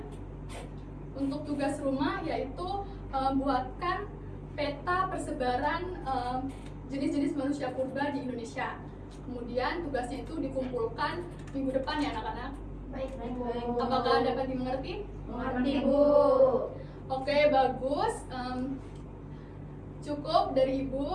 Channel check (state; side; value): identical; both; correlation 1.00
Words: Untuk tugas rumah yaitu buatkan peta persebaran jenis-jenis manusia purba di Indonesia. Kemudian tugasnya itu dikumpulkan minggu depan ya anak-anak. Baik, Bu. Apakah dapat dimengerti? Mengerti, Bu. Oke, bagus. Cukup dari